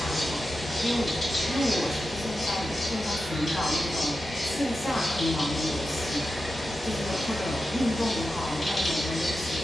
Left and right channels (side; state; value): both; normal; correlation 0.91